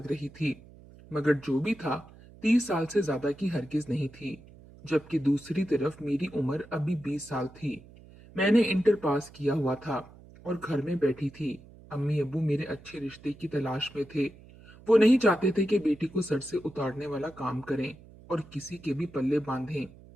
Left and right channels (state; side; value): noise; right; hum, 22 dB below the sound